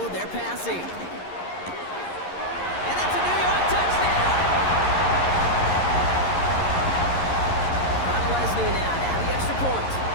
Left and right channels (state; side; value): late; right; 11 ms